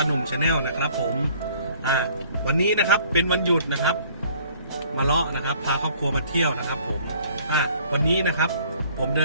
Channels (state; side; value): inverted; both; correlation -0.57